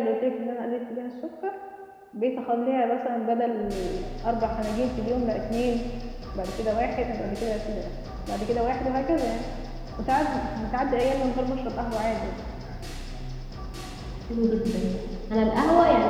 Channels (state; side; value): identical; both; correlation 1.00